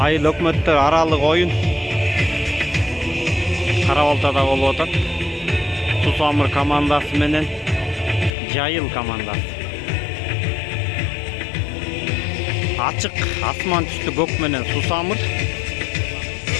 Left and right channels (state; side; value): drops out; right; at 8.3 s